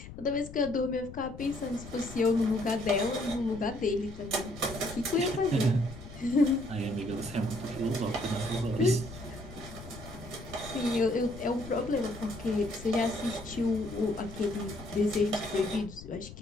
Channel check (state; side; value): noise; left; rumble, 14 dB below the sound